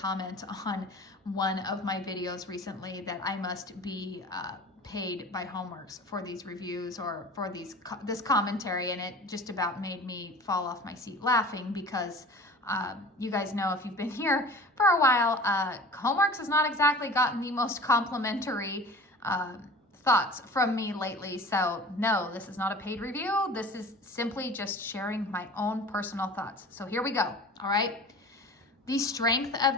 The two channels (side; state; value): both; normal; correlation 0.40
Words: on one of my videos recently that I must be paid by Homeworx for these reviews or for this commentary, and it just about made me fall off my seat laughing because you guys know, if you've been here for a while, Homeworx has not exactly gotten the most complimentary thoughts from me lately. So no, this is not a paid review. This is simply just sharing my own personal thoughts. So here we go. All right. The strength of